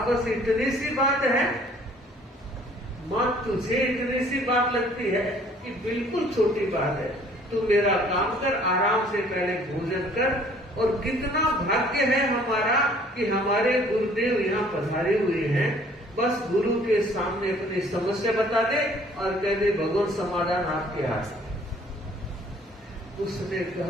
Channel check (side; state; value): both; normal; correlation 0.56